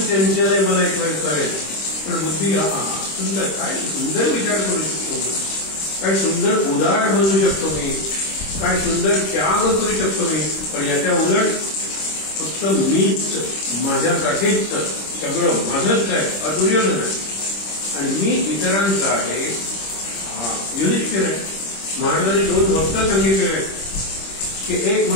आहे, मला एक वेळ कळेल, पण बुद्धी सुंदर, काय सुंदर विचार करू शकतो मी, काय सुंदर उदार बनू शकतो मी, काय सुंदर त्याग करू शकतो मी. पण याच्या उलट फक्त मीच, माझ्यासाठीच सगळं माझंच आहे, दुर्योधन आहे आणि मी इतरांचा आहे. युधिष्ठिर आहे. महाराजांनी 2 भक्त सांगितलेले की एक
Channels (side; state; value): right; late; 26 ms